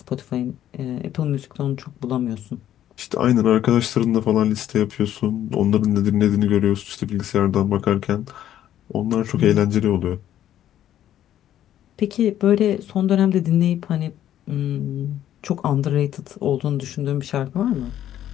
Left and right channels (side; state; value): right; quieter; 11.6 dB